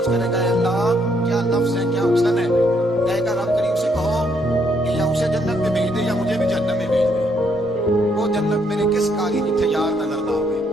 करेगा अल्लाह क्या लफ्ज है, क्या हुस्न है। कहेगा रब करीम से कहो कि या उसे जन्नत में भेज दे या मुझे भी जहन्नम में भेज दे। वो जन्नत मेरे किस काली जिथे यार नजर ना आवे,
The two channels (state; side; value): normal; both; correlation 0.72